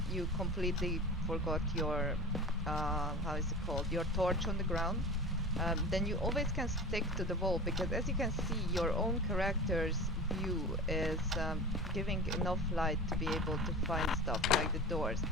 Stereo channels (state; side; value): normal; both; correlation 0.34